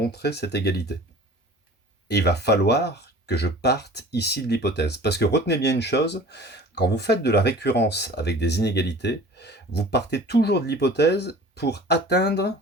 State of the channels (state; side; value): normal; both; correlation 0.43